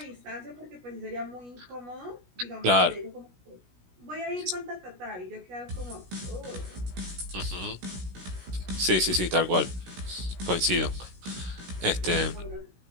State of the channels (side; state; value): left; late; 16 ms